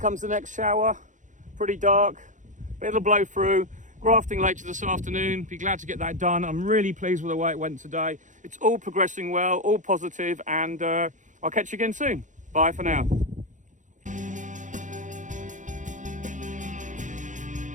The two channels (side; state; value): left; late; 0.36 ms